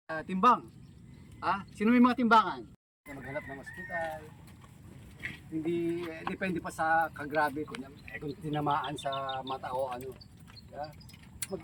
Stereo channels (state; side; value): identical; both; correlation 1.00